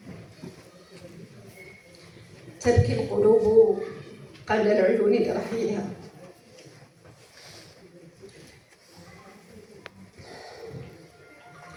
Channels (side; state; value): both; identical; correlation 1.00